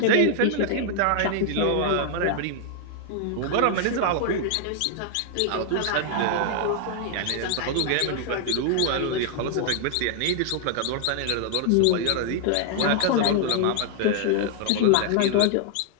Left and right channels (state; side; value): different; both; correlation 0.00